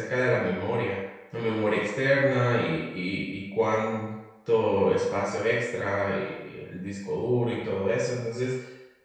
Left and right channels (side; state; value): both; identical; correlation 1.00